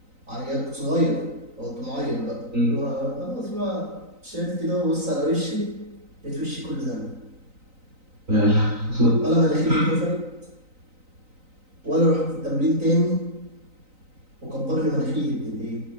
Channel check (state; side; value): late; left; 3.9 ms